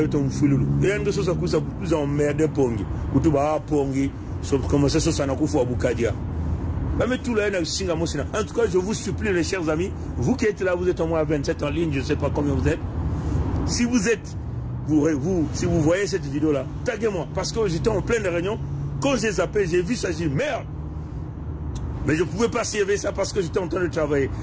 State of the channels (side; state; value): both; identical; correlation 1.00